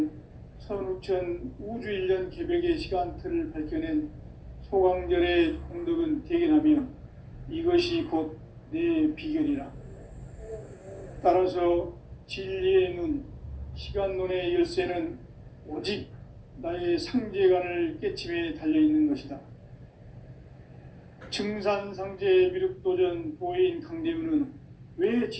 선우천 우주일년 개벽의 시간틀을 밝혀낸 소강절의 공덕은 대견하며 이것이 곧 내 비결이라. 따라서 진리의 눈, 시간론의 열쇠는 오직 나의 상제관을 깨침에 달려있는 것이다. 증산상제 미륵도전 도인 강대문은 왜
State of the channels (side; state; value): both; identical; correlation 1.00